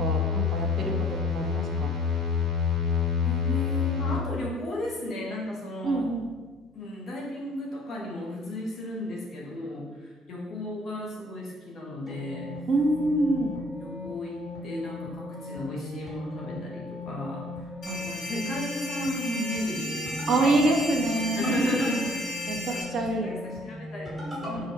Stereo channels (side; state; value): both; normal; correlation 0.55